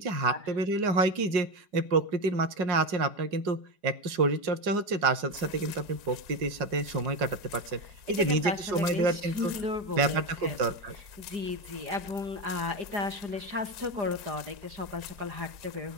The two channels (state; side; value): late; left; 4.8 ms